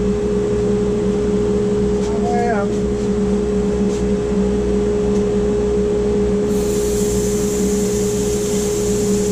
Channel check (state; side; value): identical; both; correlation 1.00